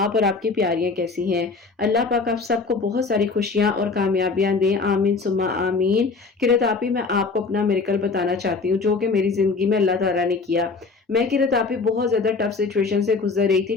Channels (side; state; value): right; quieter; 4.3 dB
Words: اور آپ کی پیاریاں کیسی ہیں؟ اللہ پاک آپ سب کو بہت ساری خوشیاں اور کامیابیاں دیں، آمین ثم آمین۔ قرۃ آپی میں آپ کو اپنا میریکل بتانا چاہتی ہوں جو کہ میری زندگی میں اللہ تعالیٰ نے کیا۔ میں قرۃ آپی بہت زیادہ ٹف سچویشن سے گزر رہی تھی۔